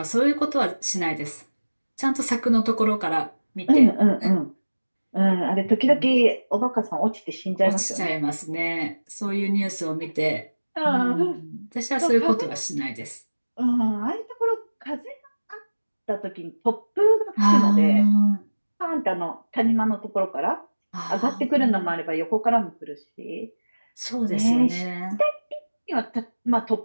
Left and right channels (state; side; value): inverted; both; correlation -1.00